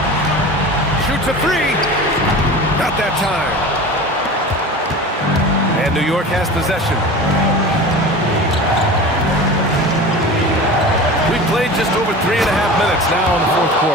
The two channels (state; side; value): normal; both; correlation 0.34